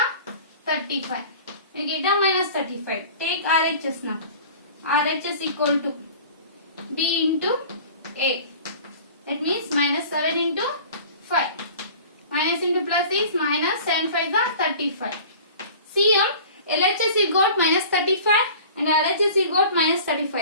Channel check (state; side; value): inverted; both; correlation -0.42